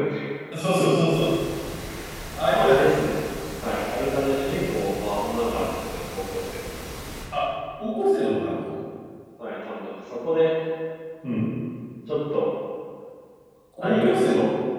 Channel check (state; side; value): identical; both; correlation 1.00